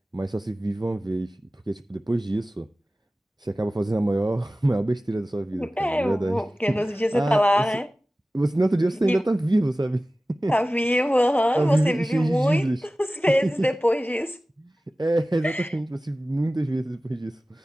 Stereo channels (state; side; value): normal; both; correlation 0.96